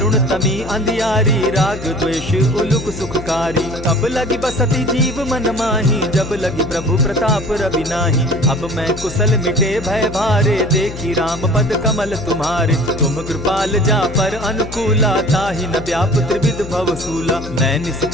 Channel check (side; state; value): left; noise; hum, 11 dB below the sound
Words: तमी अंधियारी, राग द्वेष उलुक सुखकारी। तब लगी बसती जीव मन माही, जब लगी प्रभु प्रताप रवि नाही। अब मैं कुशल मिटे भय भारे, देखी राम पद कमल तुम्हारे। तुम कृपाल जा पर अनुकूला, ताहि न व्याप त्रिविध भवसूला। मैं